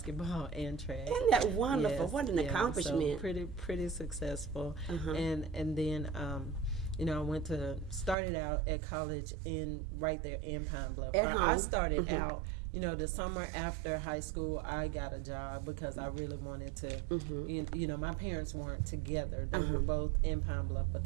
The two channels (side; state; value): left; drops out; at 8.2 s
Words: and track. Isn't that wonderful? Yes, what an accomplishment. So pretty successful. And then I started out at college right there in Pine Bluff. I started out, the summer after high school, I got a job because I really wanted to, my parents weren't together. They were both in Pine Bluff, but